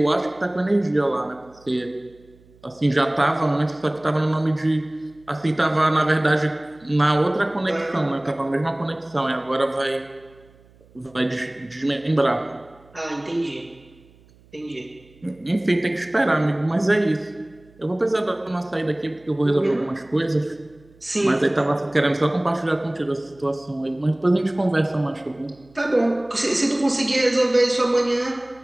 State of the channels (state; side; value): noise; right; hum, 28 dB below the sound